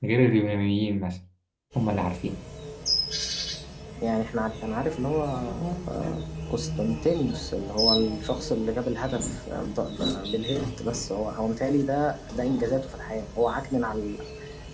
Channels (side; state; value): both; identical; correlation 1.00